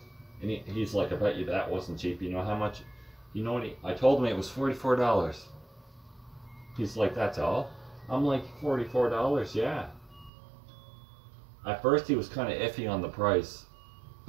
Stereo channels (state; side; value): drops out; left; at 10.3 s